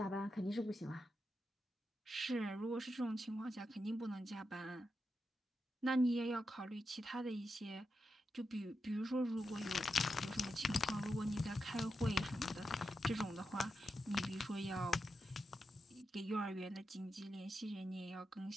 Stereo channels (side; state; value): both; normal; correlation 0.88